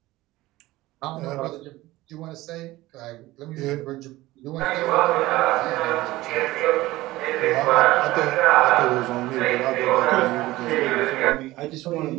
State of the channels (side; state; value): left; quieter; 18.0 dB